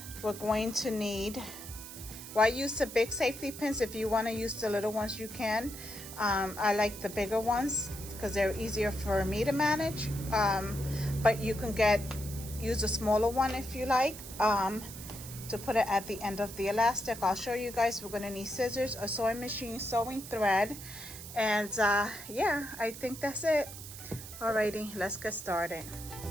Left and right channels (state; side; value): noise; right; hiss, 12 dB below the sound